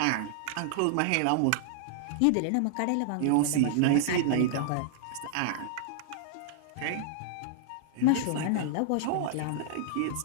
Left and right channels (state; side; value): different; both; correlation -0.01